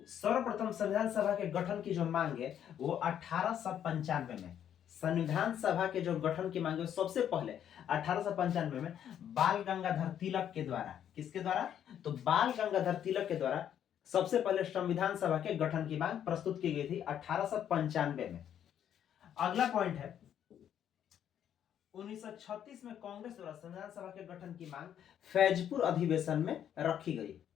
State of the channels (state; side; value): quieter; right; 9.7 dB